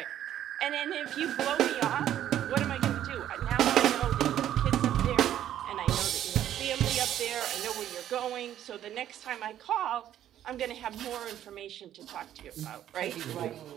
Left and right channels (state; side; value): quieter; left; 11.3 dB